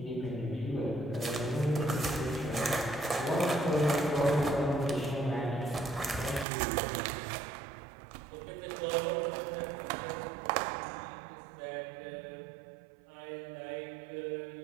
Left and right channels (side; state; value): left; drops out; at 6.5 s